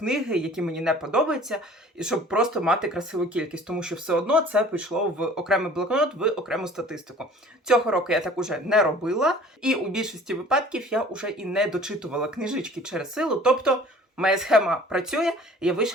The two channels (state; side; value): normal; both; correlation 0.49